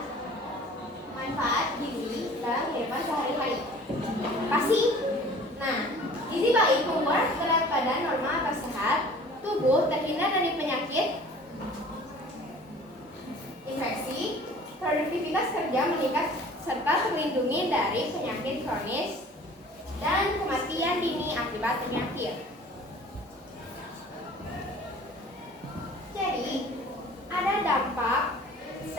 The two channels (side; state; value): both; normal; correlation 0.47